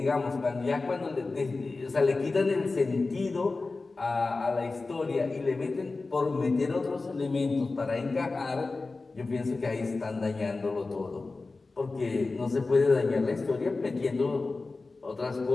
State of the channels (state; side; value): quieter; right; 3.7 dB